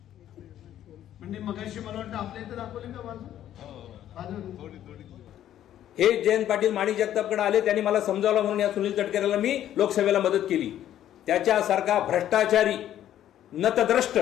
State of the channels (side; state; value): right; quieter; 11.6 dB